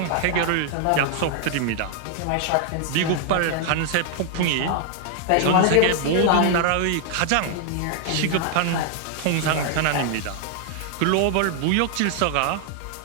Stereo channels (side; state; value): both; different; correlation 0.00